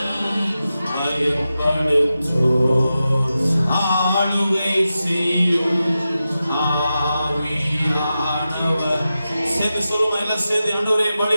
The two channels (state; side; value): inverted; both; correlation -0.92